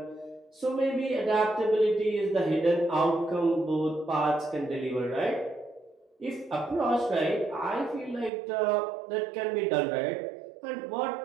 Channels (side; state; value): left; drops out; at 8.3 s